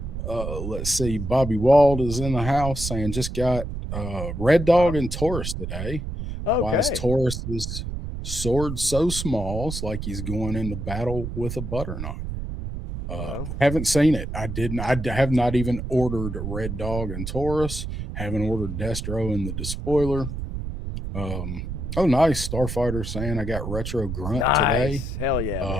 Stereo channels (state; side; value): noise; right; rumble, 5 dB below the sound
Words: Let's see. Bobby Wald is in the house saying just got Red Dog and Taurus today. Okay. Why is Taurus's sword so small? It's like he's going into battle with a butter knife. Haven't seen it. I have not even ordered Red Dog and Taurus. Haven't ordered Destro and the Despoiler. Oh, nice. Starfighter saying I got Retro Grunt today. Hell